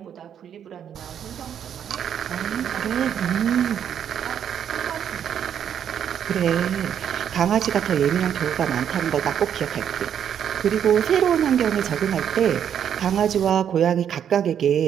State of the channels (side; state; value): left; quieter; 9.0 dB